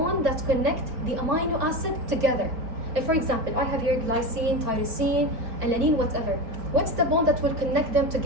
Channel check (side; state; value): left; late; 4.4 ms